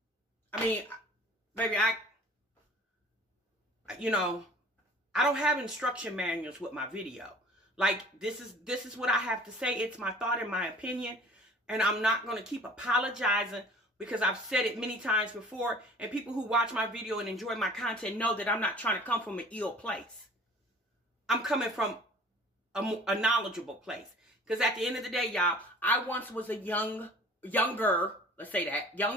I mean, baby, I don't have instruction manuals with my video. Like, this is what I have to say. It's my thought and my opinion. And I'm not going to keep apologizing, because I've said it many times before. And people who watch my video and enjoy my content know that I'm not trying to come from an ill place. I'm coming from a knowledgeable place. Because at the end of the day, y'all, I once was a younger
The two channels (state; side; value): normal; both; correlation 0.47